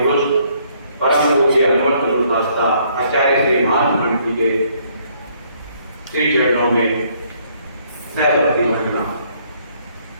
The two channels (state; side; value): inverted; both; correlation -0.67